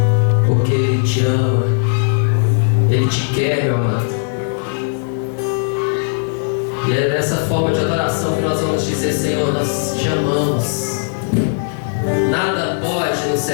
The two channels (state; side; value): silent; right; 68 dB below the other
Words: porque Ele te ama, Ele te quer, meu amado. E é dessa forma de adoração que nós vamos dizer: Senhor, nós te amamos. Nada pode nos